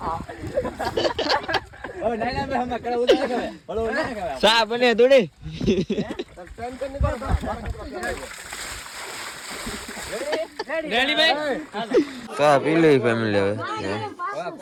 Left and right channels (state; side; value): identical; both; correlation 1.00